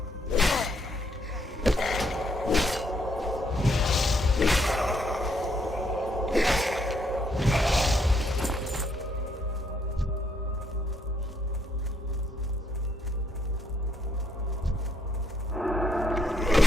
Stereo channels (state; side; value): normal; both; correlation 0.72